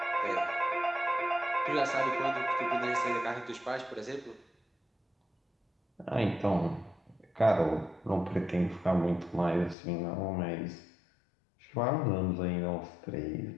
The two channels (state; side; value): drops out; right; at 9.8 s